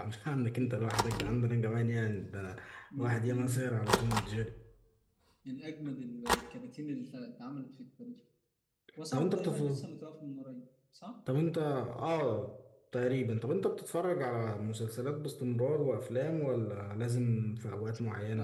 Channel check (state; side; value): identical; both; correlation 1.00